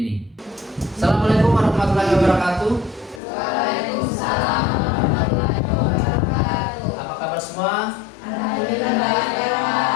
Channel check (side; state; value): right; drops out; at 3.2 s